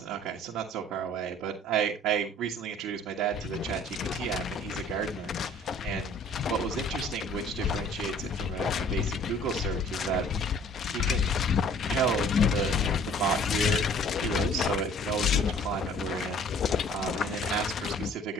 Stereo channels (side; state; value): both; normal; correlation 0.53